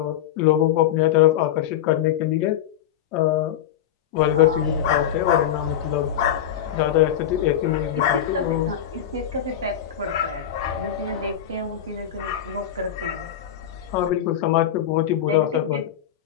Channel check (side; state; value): right; quieter; 10.3 dB